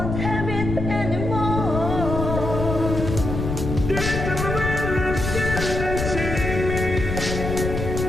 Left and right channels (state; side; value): noise; left; rumble, 4 dB below the sound